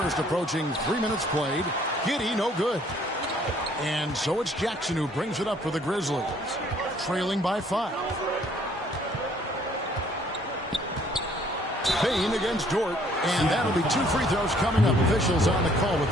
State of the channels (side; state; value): both; normal; correlation 0.61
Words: approaching 3 minutes played. Giddey, no good. And so it's Jackson who brings it up for the Grizzlies, trailing by 5. Bain against Dort, and that'll be 2 free throws coming up. Officials on the call with